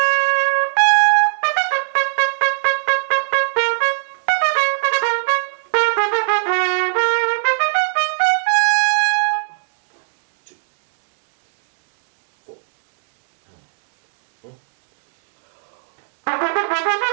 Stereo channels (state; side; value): silent; left; digital silence